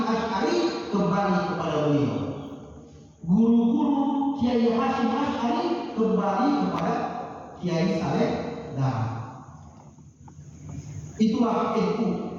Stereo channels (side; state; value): both; identical; correlation 1.00